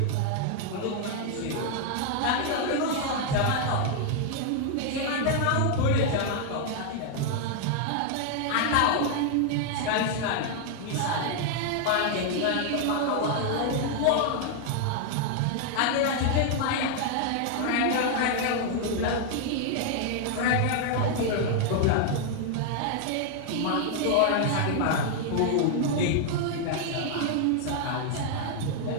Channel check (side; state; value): both; different; correlation 0.00